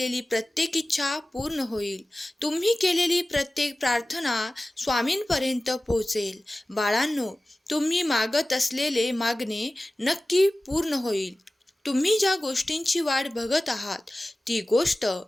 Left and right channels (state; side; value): normal; both; correlation 0.97